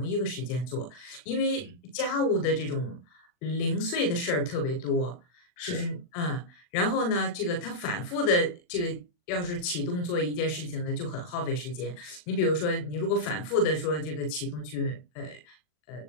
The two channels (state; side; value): late; right; 40 ms